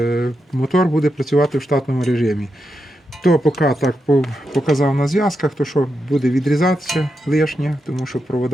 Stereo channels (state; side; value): normal; both; correlation 0.86